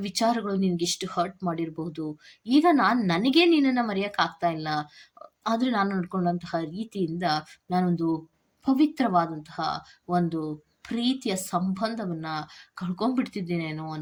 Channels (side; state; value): both; identical; correlation 1.00